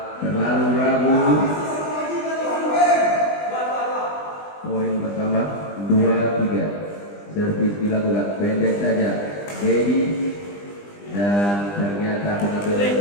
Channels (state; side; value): late; right; 20 ms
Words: terlalu ragu. Poin bertambah 2-3. Servis dilakukan pendek saja Dedi dan ternyata pengambilan